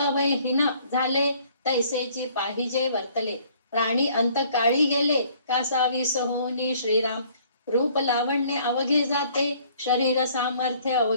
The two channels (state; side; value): inverted; both; correlation -0.59